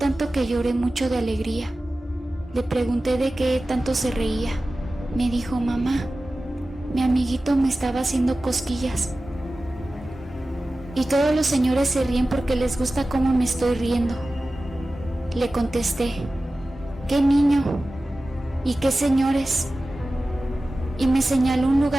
que lloré mucho de alegría. Le pregunté de qué tanto se reía. Me dijo: mamá, mi amiguito me estaba haciendo cosquillas. Y todos los señores se ríen porque les gusta cómo me estoy riendo. Le contesté: ¿qué niño? ¿Y qué señores? Y me señaló un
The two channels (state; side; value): normal; both; correlation 0.95